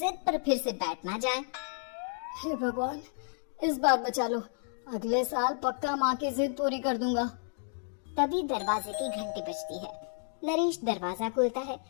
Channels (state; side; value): silent; right; 57 dB below the other